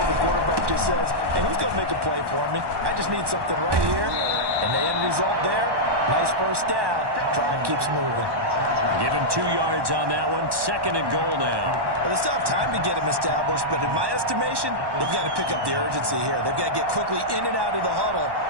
the quarterback just says, hey, who's going to make a play for me? I just need something right here. And the end result there, nice first down. Drive keeps moving. Give him 2 yards on that one. 2nd and goal now. Well, they still have time to get him established, but in my estimation, they've got to pick up the urgency here. They've got to get quickly in and out of the huddle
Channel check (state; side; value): late; left; 1.1 ms